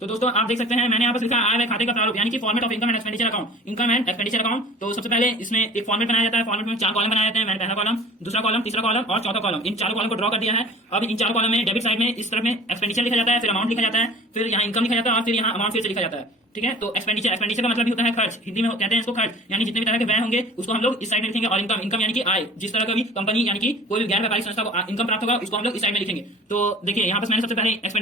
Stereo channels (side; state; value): both; normal; correlation 0.43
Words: दोस्तों, आप देख सकते हैं मैंने यहाँ पर लिखा आय व्यय खाते का प्रारूप यानी कि format of income and expenditure account, income and expenditure account. तो सबसे पहले इसमें एक फॉर्मेट बनाया जाता है। फॉर्मेट में 4 कॉलम बनाए जाते हैं। मैंने पहला कॉलम, दूसरा कॉलम, तीसरा कॉलम और चौथा कॉलम, इन चारों कॉलम को ड्रॉ कर दिया है। अब इन 4 कॉलम में डेबिट साइड में इस तरफ में एक्सपेंडिचर लिखा जाता है, फिर अमाउंट लिखा जाता है, फिर यहाँ इनकम लिखा जाता है और फिर यहाँ अमाउंट फिर से लिखा जाता है। ठीक है, तो एक्सपेंडिचर का मतलब भी होता है खर्च, हिंदी में कहते हैं इसको खर्च, यानी जितने भी तरह के व्यय होंगे उसको हम लोग इस साइड में लिखेंगे। और इनकम यानी कि आय, जिस तरह का भी कंपनी यानी कि कोई भी गैर व्यापारिक संस्था को इनकम प्राप्त होगा उसको हम लोग इस साइड में लिखेंगे। तो देखिए यहाँ पर मैंने सबसे पहले